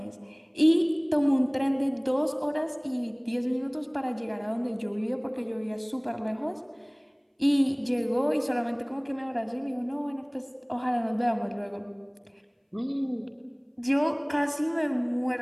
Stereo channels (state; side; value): identical; both; correlation 1.00